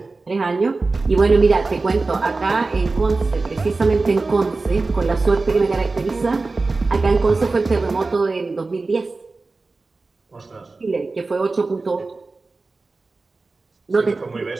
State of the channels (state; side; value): quieter; left; 3.7 dB